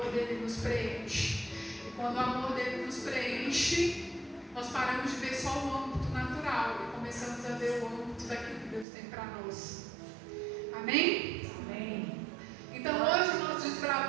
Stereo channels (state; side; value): drops out; left; at 8.8 s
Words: dele nos preenche. E quando o amor dele nos preenche, nós paramos de ver só o âmbito natural e começamos a ver o âmbito daquilo que Deus tem para nós. Amém? Amém. Então hoje nós